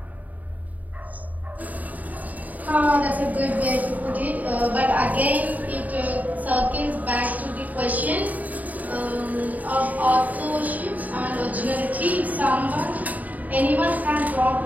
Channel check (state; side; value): late; left; 0.076 ms